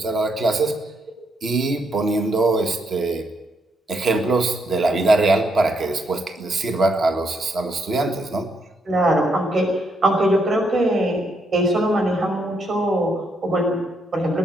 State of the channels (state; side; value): normal; both; correlation 0.77